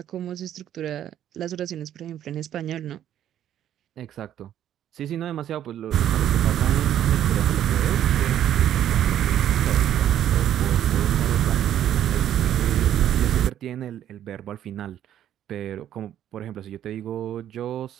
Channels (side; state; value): left; quieter; 11.0 dB